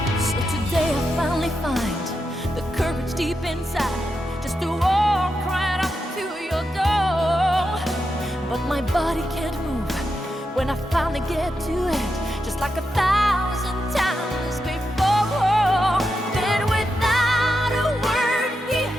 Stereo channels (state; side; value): normal; both; correlation 0.86